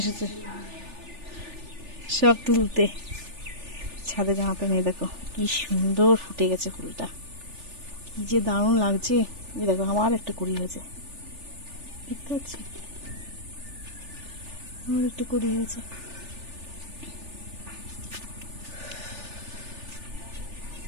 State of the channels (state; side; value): late; left; 3.4 ms